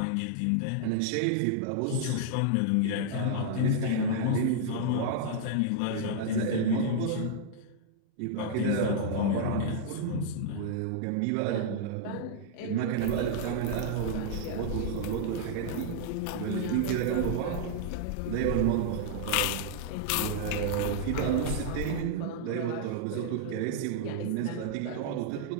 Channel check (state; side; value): different; both; correlation -0.01